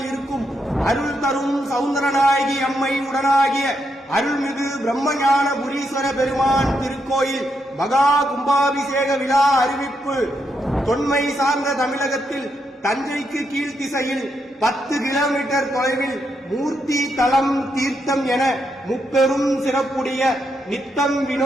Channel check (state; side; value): normal; both; correlation 0.80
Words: இருக்கும் அருள் தரும் சவுந்தரநாயகி அம்மை உடனாகிய அருள்மிகு பிரம்மஞான புரீஸ்வர பெருமான் திருக்கோயில் மகா கும்பாபிஷேக விழா அறிவிப்பு. தொன்மை சார்ந்த தமிழகத்தில் தஞ்சைக்கு கீழ்த்திசையில் 10 கிலோமீட்டர் தொலைவில் மூர்த்தி தலம் தீர்த்தம் என முப்பெரும் சிறப்புடைய நித்தம்